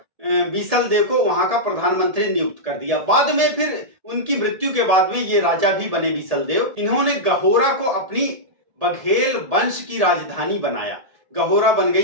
बीसल देव को वहां का प्रधानमंत्री नियुक्त कर दिया। बाद में फिर उनकी मृत्यु के बाद में ये राजा भी बने बीसल देव। इन्होंने गहोरा को अपनी बघेल वंश की राजधानी बनाया, गहोरा बन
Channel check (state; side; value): late; left; 1.7 ms